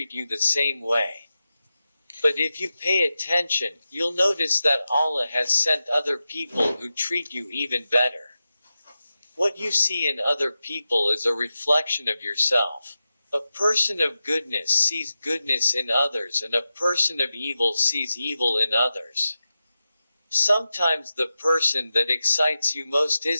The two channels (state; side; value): inverted; both; correlation -0.92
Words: you the same way. But if you pay attention, you'll notice that Allah has sent other people who treat you even better. What you see in other people is a reflection of yourself. A person of goodness sees goodness in others, and a person of evil sees evil in others. Sometimes the person that excites you most